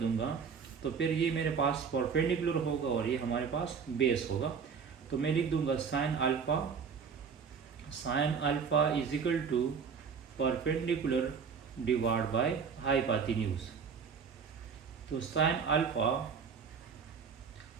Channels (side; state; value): left; quieter; 6.2 dB